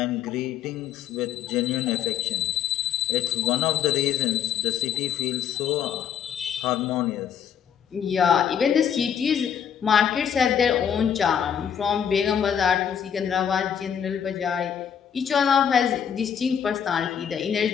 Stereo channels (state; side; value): quieter; right; 8.4 dB